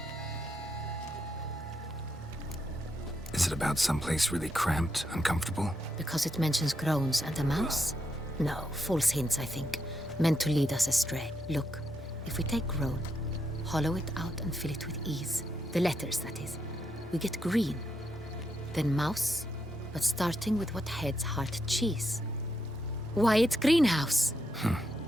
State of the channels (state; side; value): normal; both; correlation 0.81